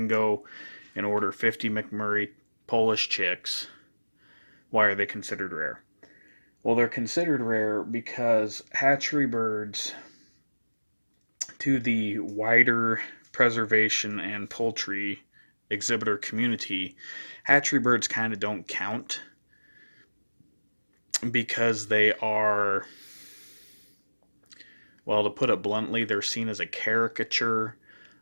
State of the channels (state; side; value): inverted; both; correlation -1.00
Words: go and order 50 McMurray Polish chicks. Why are they considered rare? Well, they're considered rare because hatchery birds, to the wider preservation and poultry exhibitor community, hatchery birds kind of don't count because they are, well, to put it bluntly, they're seen as a caricature